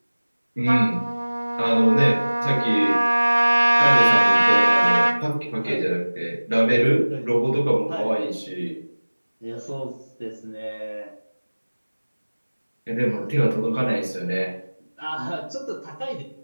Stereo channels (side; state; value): both; inverted; correlation -1.00